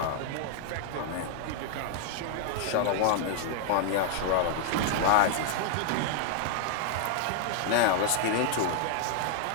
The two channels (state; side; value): different; both; correlation 0.00